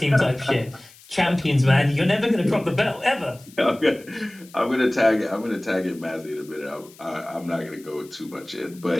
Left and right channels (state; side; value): noise; left; hiss, 24 dB below the sound